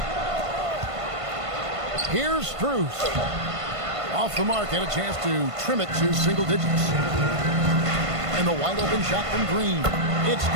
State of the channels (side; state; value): left; late; 1.5 ms